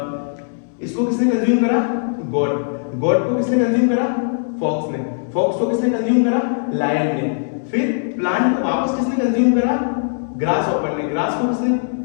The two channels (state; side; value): silent; right; 66 dB below the other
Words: इसको किसने कंज्यूम करा, गॉड। गॉड को किसने कंज्यूम करा, फॉक्स ने। फॉक्स को किसने कंज्यूम करा, लायन ने। फिर प्लांट को वापस किसने कंज्यूम करा, ग्रास हॉपर ने। ग्रास को किसने